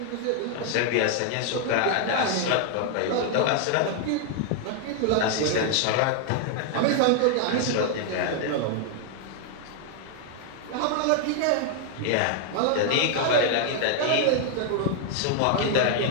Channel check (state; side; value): different; both; correlation 0.00